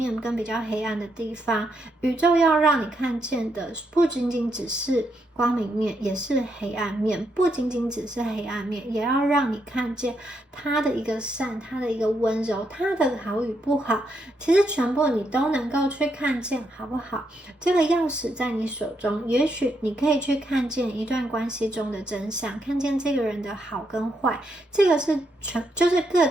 跟比较黑暗的地方。宇宙要让你看见的不仅仅只是光明面，也是黑暗面，不仅仅只是黑暗面，也要让你看见它的一个善，它的一个温柔，它的好与不好，其实全部你都能够去看见，好不好？这个钥匙在你手中，也许你可以去看见一段关系中的真相，看见这个人的好跟坏，这个是就是各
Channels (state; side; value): normal; both; correlation 0.79